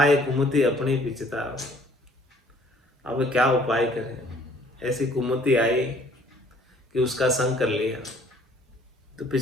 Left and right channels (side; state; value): both; normal; correlation 0.58